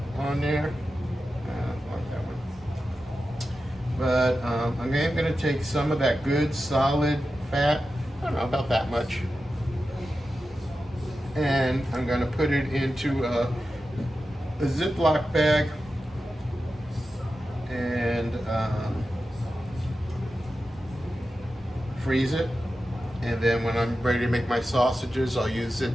on there. But I'm going to take some of that good solid fat, I don't know, about that much, and I'm going to put it into a Ziploc bag and freeze it. And then when I'm ready to make my sausages, I'll use it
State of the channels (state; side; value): normal; both; correlation 0.92